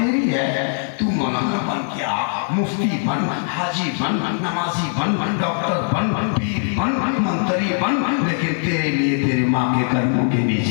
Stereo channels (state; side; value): silent; right; 56 dB below the other